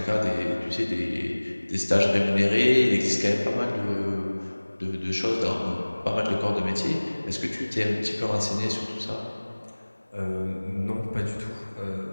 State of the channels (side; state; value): both; inverted; correlation -1.00